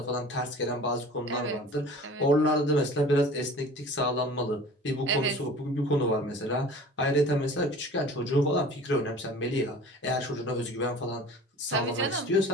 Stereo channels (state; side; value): normal; both; correlation 0.43